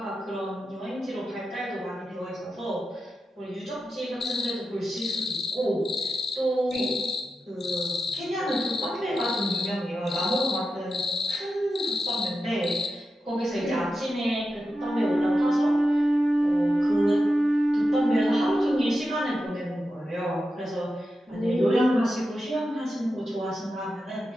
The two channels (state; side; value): normal; both; correlation 0.90